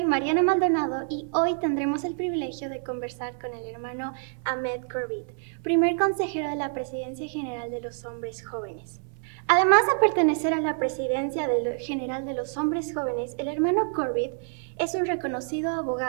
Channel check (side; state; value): left; silent; 59 dB below the other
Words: Mariana Maldonado y hoy tendremos el privilegio de conversar con el hermano Ahmed Corbett, primer consejero de la Presidencia General de los Hombres Jóvenes. Además de pertenecer a la Presidencia General de los Hombres Jóvenes, el hermano Corbett es un reconocido